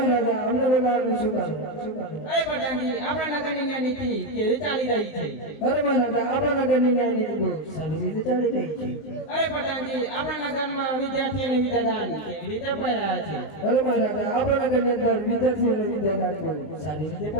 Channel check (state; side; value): late; right; 19 ms